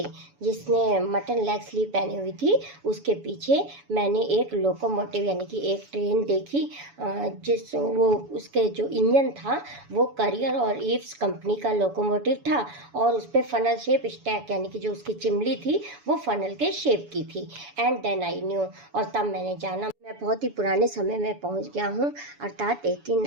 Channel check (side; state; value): left; late; 7.0 ms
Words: जिसने mutton leg sleeve पहनी हुई थी उसके पीछे मैंने एक लोकोमोटिव यानी कि एक ट्रेन देखी, जिस वो उसके जो इंजन था वो करियर और ईव्स कंपनी का लोकोमोटिव था, और उस पर फनल शेप स्टैक यानी कि जो उसकी चिमली थी वो फनल के शेप की थी। एंड देन आई न्यू, और तब मैंने जाना मैं बहुत ही पुराने समय में पहुंच गया हूँ, अर्थात